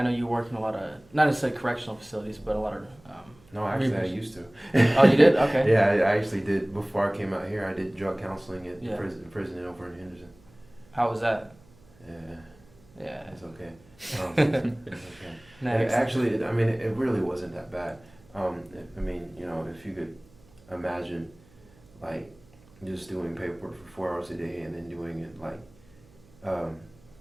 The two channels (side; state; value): right; noise; hum, 27 dB below the sound